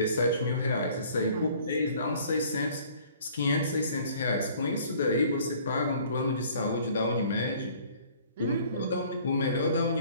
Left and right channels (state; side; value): inverted; both; correlation -0.54